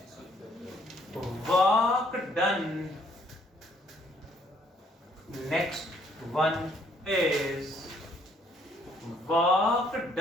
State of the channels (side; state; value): both; normal; correlation 0.66